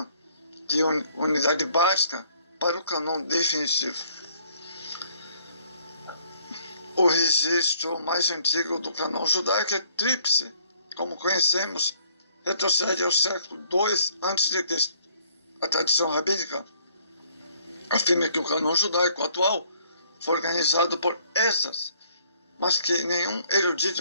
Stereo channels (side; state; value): both; inverted; correlation -0.63